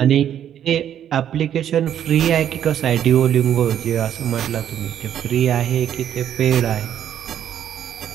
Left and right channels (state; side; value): quieter; left; 10.0 dB